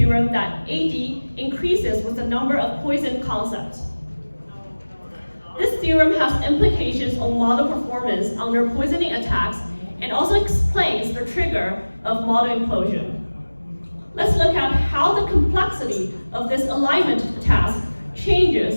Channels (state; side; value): inverted; both; correlation -1.00